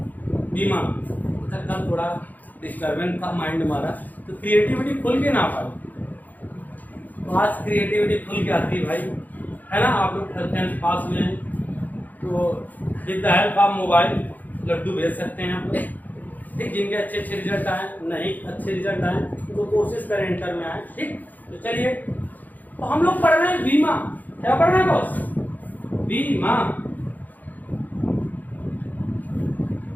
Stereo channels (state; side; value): late; right; 0.082 ms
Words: बीमा। अच्छा, कल थोड़ा डिस्टर्बेंस था माइंड हमारा, तो क्रिएटिविटी खुल के ना पाई। तो आज क्रिएटिविटी खुल के आती है भाई, है ना। आप लोग 10th पास हुए हैं तो with the help of mobile लड्डू भेज सकते हैं आप लोग। ठीक, जिनके अच्छे अच्छे रिजल्ट आए, नहीं अच्छे रिजल्ट आए तो कोशिश करें इंटर में आए। ठीक, तो चलिए, तो हम लोग पढ़ रहे हैं बीमा। क्या पढ़ रहे हैं बॉस? बीमा।